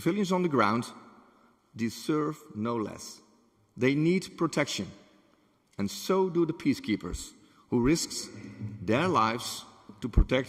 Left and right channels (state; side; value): identical; both; correlation 1.00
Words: on the ground deserve no less. They need protection, and so do the peacekeepers, who risk their lives to